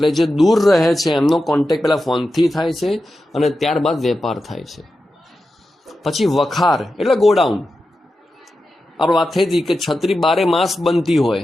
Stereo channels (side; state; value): both; normal; correlation 0.91